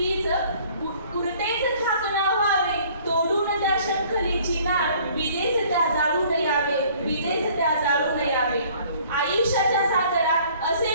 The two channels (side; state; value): both; inverted; correlation -0.55